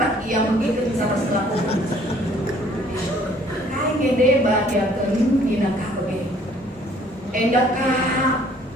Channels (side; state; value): both; normal; correlation 0.58